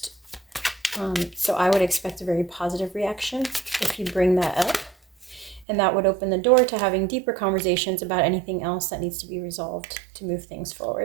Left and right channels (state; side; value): drops out; left; at 5.7 s